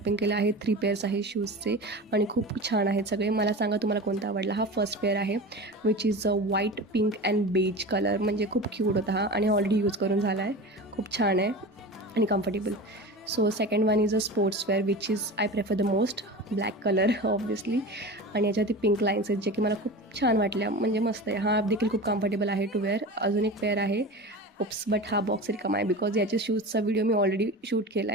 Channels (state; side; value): normal; both; correlation 0.31